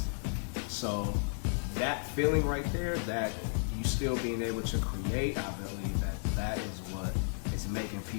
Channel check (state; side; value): silent; right; 55 dB below the other